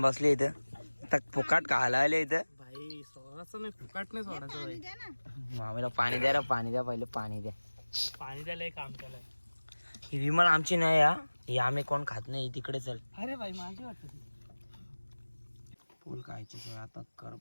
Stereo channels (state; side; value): inverted; both; correlation -1.00